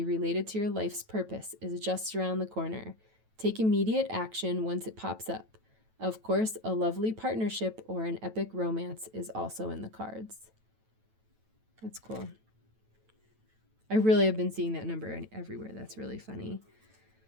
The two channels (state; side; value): late; left; 9.1 ms